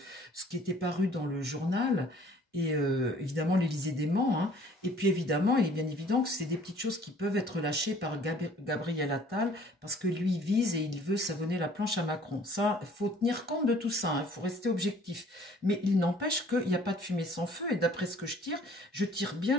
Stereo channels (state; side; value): normal; both; correlation 0.55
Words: ce qui était paru dans le journal. Et évidemment l'Élysée dément, hein. Et puis évidemment, il est bien évident que c'est des petites choses qui peuvent être lâchées par Gabriel Attal, parce que lui vise et il veut savonner la planche à Macron. Ça, il faut tenir compte de tout ça, il faut rester objectif. Mais il n'empêche qu'il n'y a pas de fumée sans feu, et d'après ce que je tire